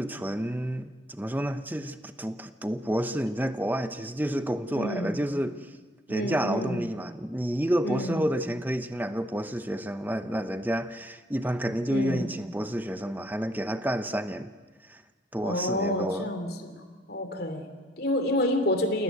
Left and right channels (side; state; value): both; normal; correlation 0.67